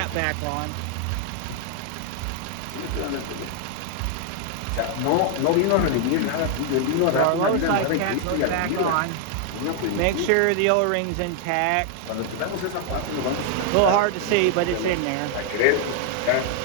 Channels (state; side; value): different; both; correlation 0.00